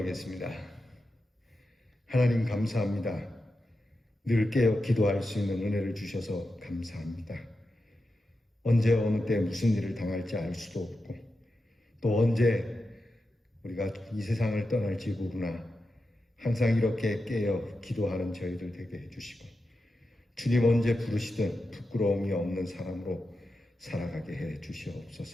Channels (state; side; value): normal; both; correlation 0.90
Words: 하나님 감사합니다. 늘 깨어 기도할 수 있는 은혜를 주셔서 감사합니다. 언제 어느 때 무슨 일을 당할지 알 수도 없고 또 언제 우리가 이 세상을 떠날지 모르나 항상 이렇게 깨어 기도하는 저희들 되게 해주시고 주님 언제 부르시든 부끄러움이 없는 사람으로 살아가게 해